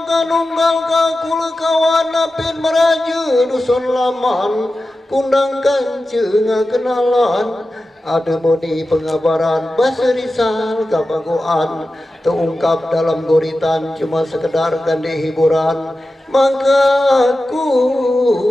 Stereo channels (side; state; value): both; normal; correlation 0.93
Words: kanunggal kakul kawan apin meraja dusun laman kundang kanceng kenalan ada moni pengabaran bahasa risal kabagoan terungkap dalam guritan cuma sekedar gandhi hiburan maka aku